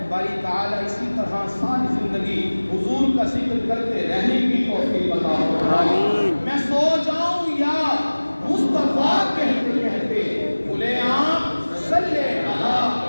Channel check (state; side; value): inverted; both; correlation -1.00